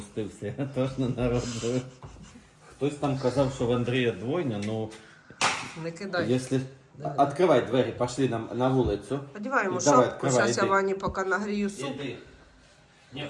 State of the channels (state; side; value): identical; both; correlation 1.00